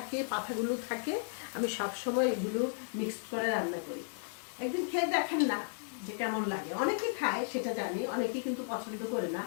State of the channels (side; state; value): right; silent; digital silence